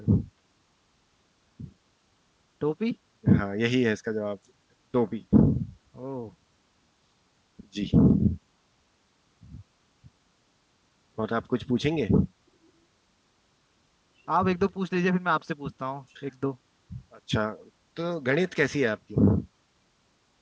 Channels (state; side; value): identical; both; correlation 1.00